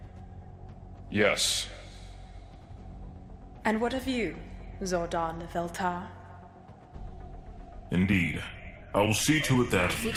Yes. And what of you, Zordon of Eltar? Indeed. I will see to it that...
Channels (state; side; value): identical; both; correlation 1.00